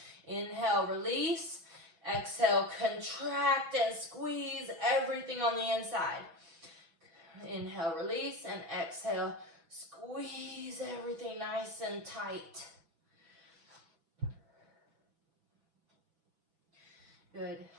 Inhale, release. Exhale, contract and squeeze everything on the inside. Inhale, release, and exhale, squeeze everything nice and tight. Good,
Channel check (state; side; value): late; left; 6.1 ms